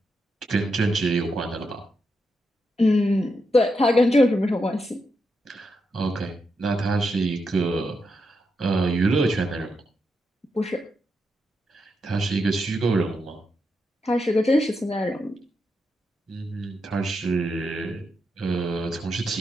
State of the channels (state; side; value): normal; both; correlation 0.84